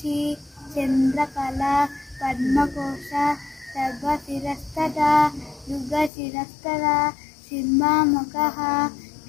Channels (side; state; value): right; drops out; at 6.1 s